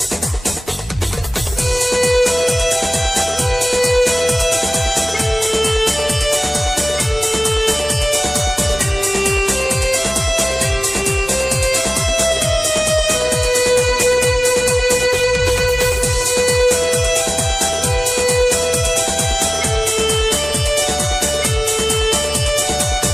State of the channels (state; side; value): normal; both; correlation 0.98